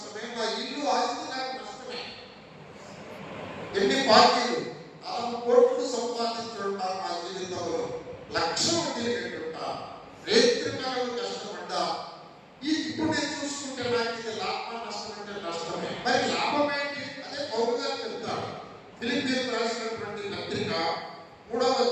నా ఇల్లు ఆస్తి నాకు నష్టమే. ఎన్ని పార్టీలు 40 కోట్లు సంపాదించుంటారు నా జీవితంలో, లక్షలు తిరిగేట్టున్నా, రేత్రికాలను కష్టపడ్డా. ఇప్పుడు నేను చూసుకుంటే నాకు ఇది లాభం నష్టం అంటే నష్టమే. మరి లాభం ఏంటి? అదే పౌలు గారు చెప్తాడు. ఫిలిప్పీయులకు రాసినటువంటి పత్రిక 3వ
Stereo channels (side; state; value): both; identical; correlation 1.00